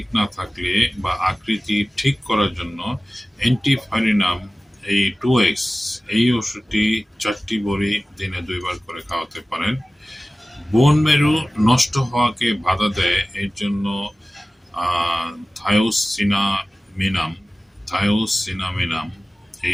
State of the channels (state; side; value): normal; both; correlation 0.97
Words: না থাকলে বা আকৃতি ঠিক করার জন্য অ্যান্টিফারিনাম এই 2x এই ওষুধটি 4টি বড়ি দিনে 2 বার করে খাওয়াতে পারেন। বোন মেরু নষ্ট হওয়াকে বাধা দেয়, এর জন্য থায়োসিনামিনাম